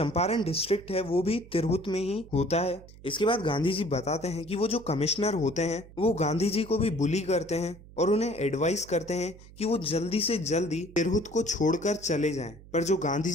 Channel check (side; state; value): right; noise; hum, 20 dB below the sound